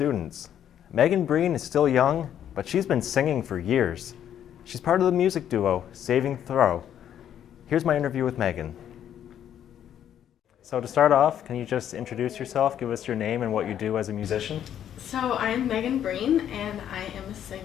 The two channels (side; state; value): right; quieter; 10.0 dB